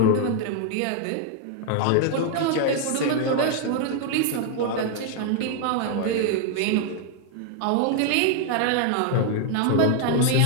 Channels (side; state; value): both; different; correlation 0.00